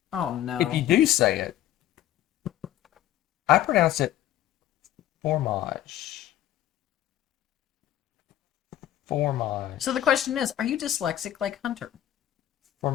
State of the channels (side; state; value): right; quieter; 12.5 dB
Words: oh no. if you do say it, I pronounce it fromage. Fromage. So the question is, are you dyslexic like Hunter?